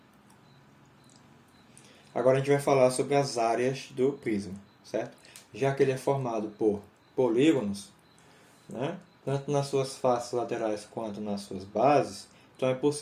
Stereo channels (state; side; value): identical; both; correlation 1.00